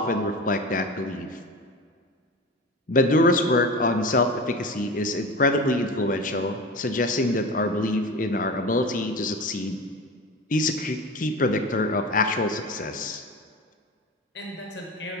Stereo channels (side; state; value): both; normal; correlation 0.30